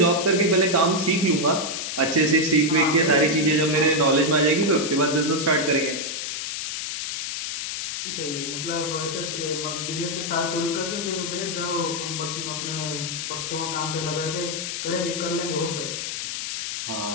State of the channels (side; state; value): left; noise; hiss, 4 dB below the sound